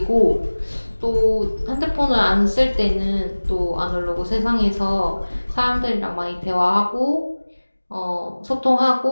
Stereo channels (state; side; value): inverted; both; correlation -1.00